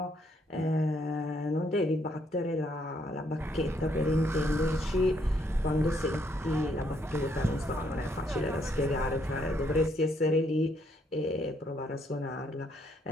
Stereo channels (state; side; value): normal; both; correlation 0.72